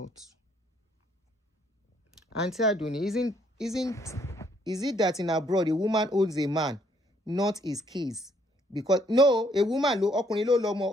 Aunty Aduni, is it that in abroad a woman owns a man, not his keys? Because no, a woman ọkùnrin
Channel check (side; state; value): both; normal; correlation 0.68